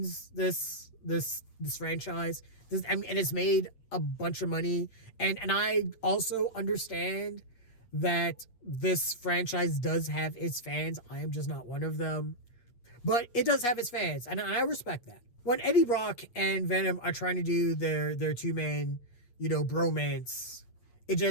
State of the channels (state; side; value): late; right; 8.4 ms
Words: this franchise. And it's made a bunch of money. And I also understand that this franchise does have its fans. I am just not one of them. But it does have its fans, and I respect that. When Eddie Brock and Venom are trying to do their two-man, bromance, it